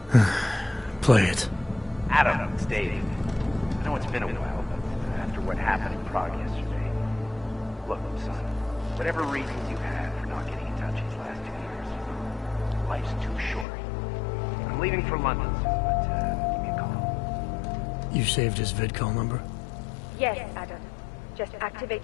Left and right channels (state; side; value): drops out; right; at 13.7 s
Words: Play it. Adam, it's David. I know it's been a while, but after what happened in Prague yesterday... Look, son, whatever reasons you had for not getting in touch these last 2 years, life's too short. I'm leaving for London soon, but give me a call. You saved his vidcall number? Yes, Adam. Just activate